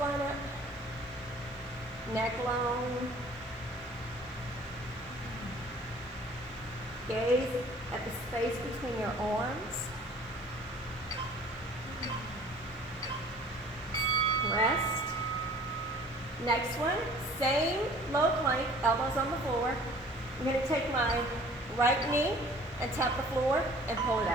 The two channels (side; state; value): both; normal; correlation 0.50